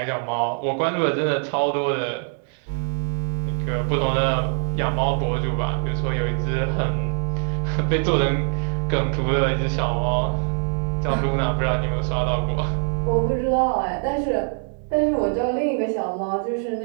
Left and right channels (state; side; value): silent; left; 63 dB below the other